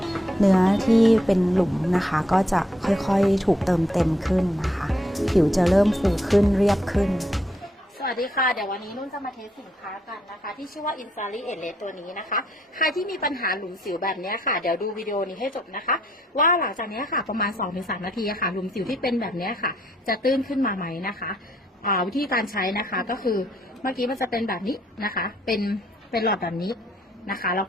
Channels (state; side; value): normal; both; correlation 0.72